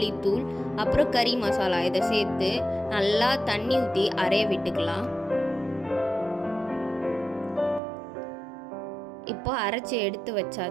அப்புறம் கறி மசாலா இதை சேர்த்து நல்லா தண்ணி ஊற்றி அரைய விட்டுக்கலாம். இப்போ அரைச்சி எடுத்து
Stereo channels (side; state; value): left; drops out; at 7.8 s